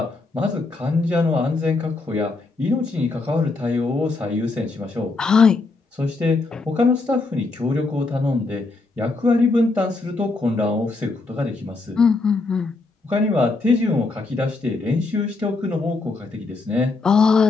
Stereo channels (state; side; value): quieter; right; 3.6 dB